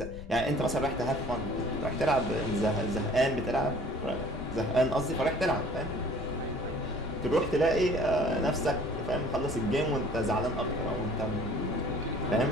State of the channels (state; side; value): noise; left; rumble, 13 dB below the sound